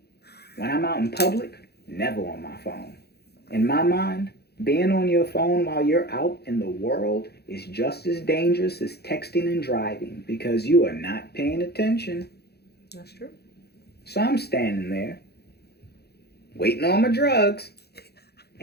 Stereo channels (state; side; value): late; right; 0.47 ms